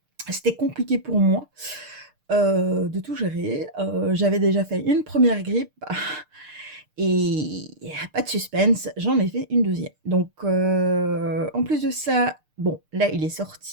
c'était compliqué pour moi de tout gérer. J'avais déjà fait une première grippe et pas de suspense, j'en ai fait une deuxième. Donc en plus de ça, bon, là, il est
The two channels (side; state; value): left; late; 6.6 ms